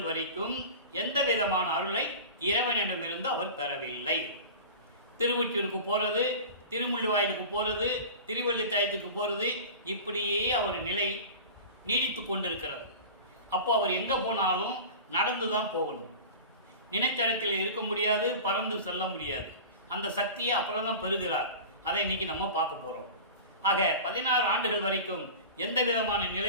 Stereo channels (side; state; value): both; inverted; correlation -0.34